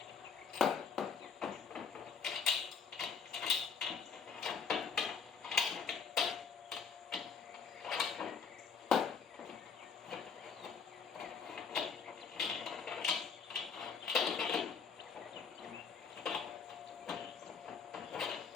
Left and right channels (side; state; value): right; quieter; 6.1 dB